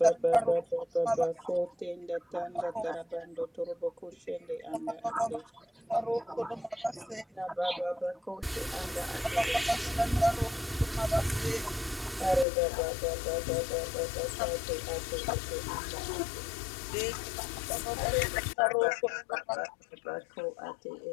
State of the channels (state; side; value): drops out; right; at 12.5 s